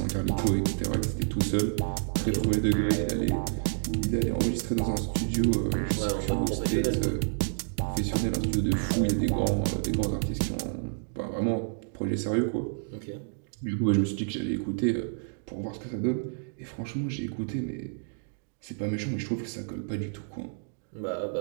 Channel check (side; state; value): left; silent; digital silence